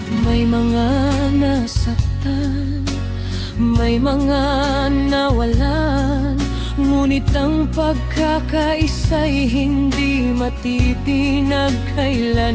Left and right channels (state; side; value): identical; both; correlation 1.00